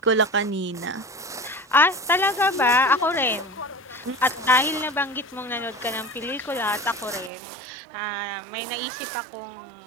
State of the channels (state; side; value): drops out; left; at 7.3 s